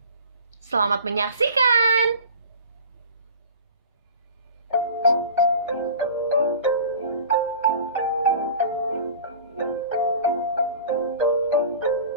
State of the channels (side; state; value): both; inverted; correlation -0.39